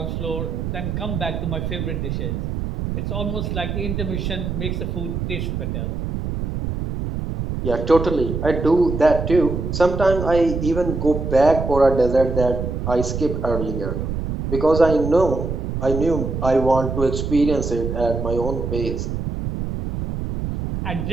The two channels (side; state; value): right; noise; rumble, 3 dB below the sound